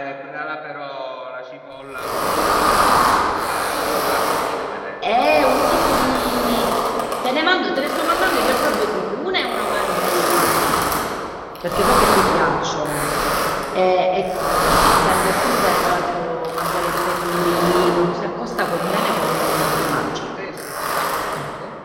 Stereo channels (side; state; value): both; identical; correlation 1.00